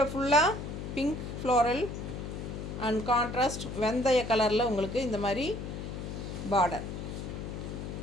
ஃபுல்லாக பிங்க் ஃப்ளோரல் அண்ட் கான்ட்ராஸ்ட் வெந்தய கலரில் உங்களுக்கு இந்த மாதிரி பார்டர்.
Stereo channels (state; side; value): noise; left; hum, 7 dB below the sound